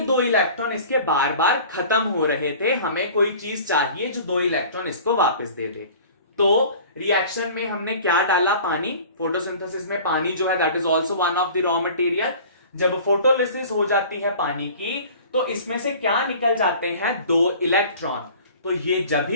दो इलेक्ट्रॉन इसके बार बार खत्म हो रहे थे, हमें कोई चीज चाहिए जो दो इलेक्ट्रॉन इसको वापस दे दे। तो रिएक्शन में हमने क्या डाला, पानी। फोटोसिंथेसिस में पानी जो है that is also one of the raw material. जब फोटोलिसिस हो जाती है पानी की तो इसमें से क्या निकल जाते हैं, दो इलेक्ट्रॉन। तो ये जब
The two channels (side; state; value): both; inverted; correlation -0.44